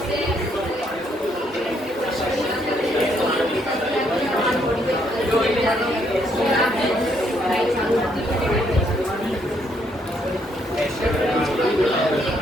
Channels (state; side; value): normal; both; correlation 0.72